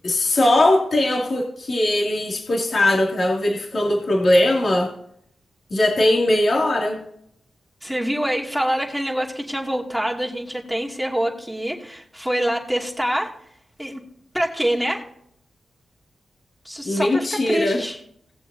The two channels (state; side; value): normal; both; correlation 0.95